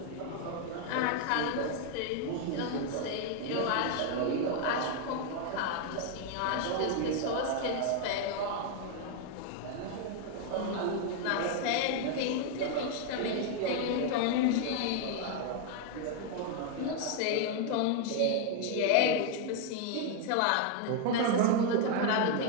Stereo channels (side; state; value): both; different; correlation 0.01